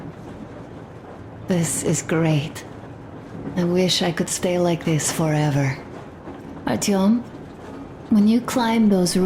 This is great. I wish I could stay like this forever. Artyom, when you climbed those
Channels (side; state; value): both; identical; correlation 1.00